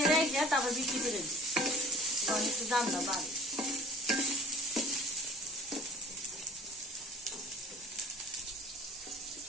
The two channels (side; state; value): both; normal; correlation 0.47